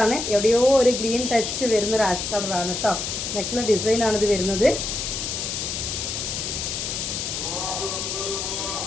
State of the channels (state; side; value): noise; left; hiss, 3 dB below the sound